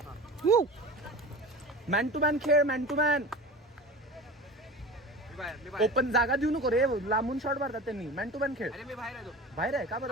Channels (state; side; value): normal; both; correlation 0.34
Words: मॅन टू मॅन खेळ. Man to man. ओपन जागा देऊ नको रे, लांबून शॉट मारतात त्यांनी. मॅन टू मॅन खेळ. बाहेर आहे का